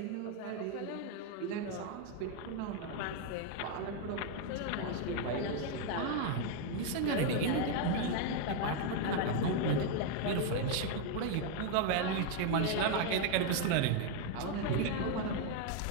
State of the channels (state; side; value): different; both; correlation 0.01